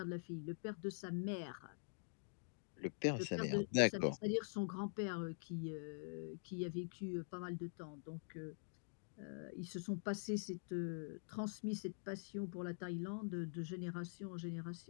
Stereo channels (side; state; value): right; silent; digital silence